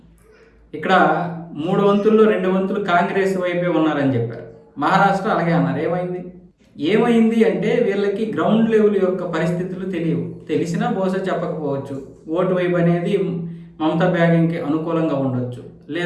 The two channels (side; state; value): both; identical; correlation 1.00